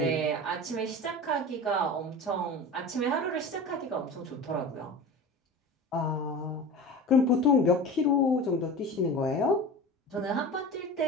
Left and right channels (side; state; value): both; normal; correlation 0.33